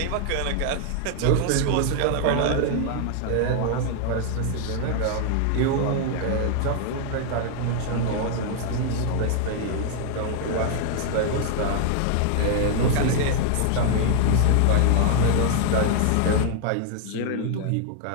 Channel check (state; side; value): different; both; correlation 0.00